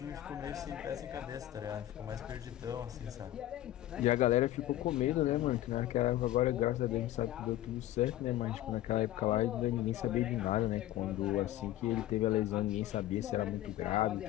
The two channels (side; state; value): right; quieter; 14.2 dB